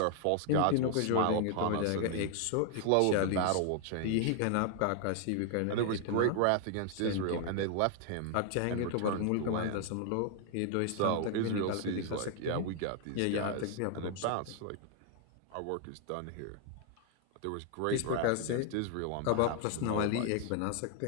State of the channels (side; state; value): both; different; correlation 0.00